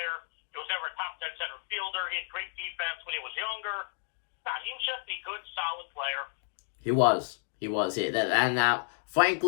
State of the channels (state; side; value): silent; right; 57 dB below the other